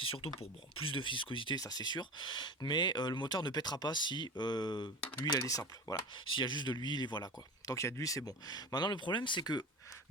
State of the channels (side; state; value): both; normal; correlation 0.31